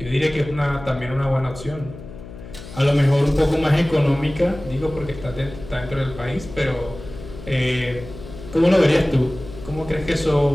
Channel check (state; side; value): noise; left; hum, 14 dB below the sound